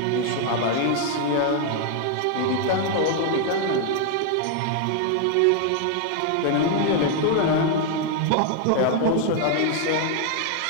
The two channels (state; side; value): different; both; correlation 0.00